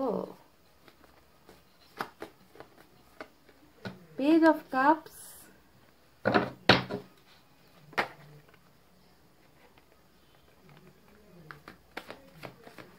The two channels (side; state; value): both; identical; correlation 1.00